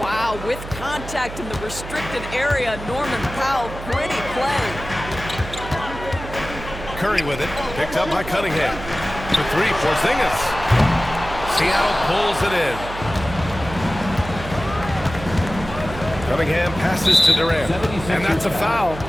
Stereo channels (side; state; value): right; noise; hum, 11 dB below the sound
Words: Wow, with contact in the restricted area, Norman Powell, pretty play. Curry with it. Picked up by Cunningham. For 3, Porzingis. Seattle pulls it in. Cunningham passes to Durant. And that's a foul